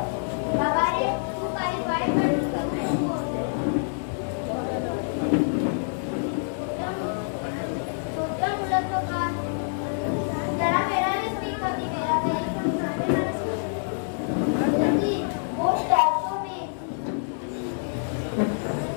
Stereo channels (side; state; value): right; silent; digital silence